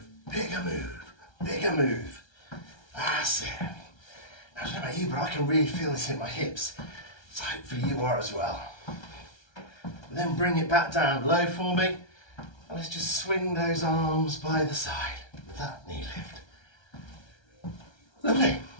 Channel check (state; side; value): late; right; 1.3 ms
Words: bigger move, bigger move. That's it. Now, I don't know about you, but I can really feel this in my hips. So hopefully you are as well. And then bring it back down low for me. And let's just swing those arms by the side with that knee lift. Lovely.